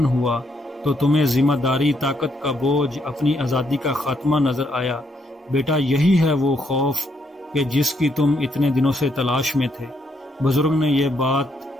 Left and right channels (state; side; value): normal; both; correlation 0.74